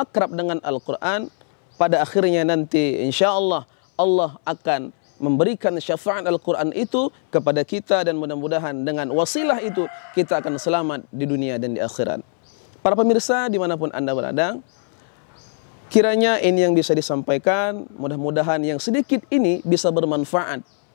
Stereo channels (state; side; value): silent; right; 64 dB below the other